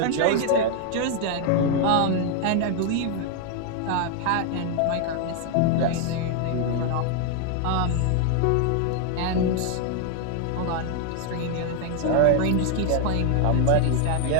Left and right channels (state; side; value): different; both; correlation 0.00